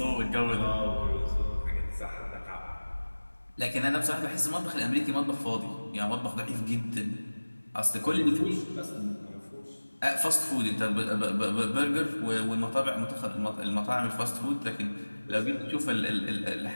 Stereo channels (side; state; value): both; inverted; correlation -1.00